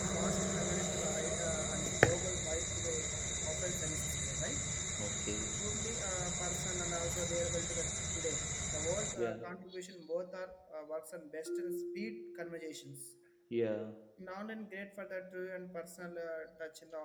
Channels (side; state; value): both; identical; correlation 1.00